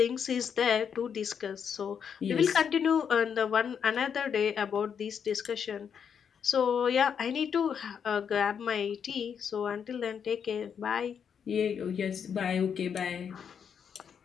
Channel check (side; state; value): right; quieter; 7.4 dB